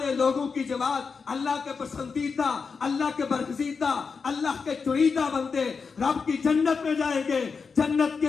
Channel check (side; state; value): right; quieter; 5.2 dB